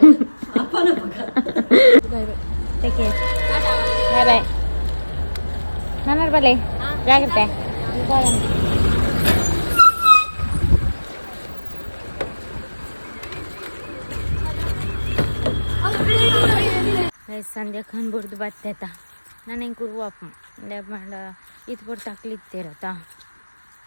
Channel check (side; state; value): both; inverted; correlation -1.00